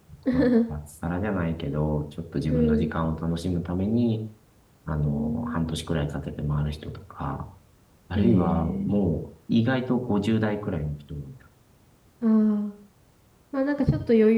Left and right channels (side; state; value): both; identical; correlation 1.00